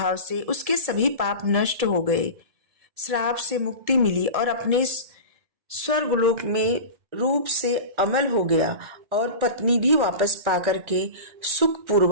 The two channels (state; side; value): late; left; 1.7 ms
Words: से उसके सभी पाप नष्ट हो गए, श्राप से मुक्ति मिली और अपने स्वर्गलोक में रूप से अमल हो गया और पत्नी भी वापस पाकर के सुख